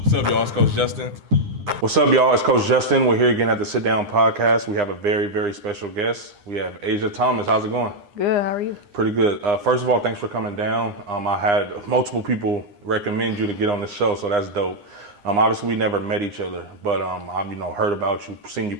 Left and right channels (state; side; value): late; left; 9.8 ms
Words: What's up, y'all? It's Coach Justin. What's up, y'all? It's Coach Justin. We're here again at the Sit Down Podcast. We have a very, very special guest. We have Asha Thomas. How's it going? Good. How are you? Pretty good. First of all, thanks for coming down. I had multiple people recommend you to get on the show, so that's dope. Obviously, we never met each other, but I've heard about you, seen you